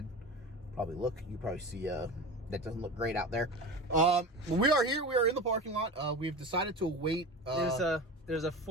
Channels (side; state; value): both; normal; correlation 0.29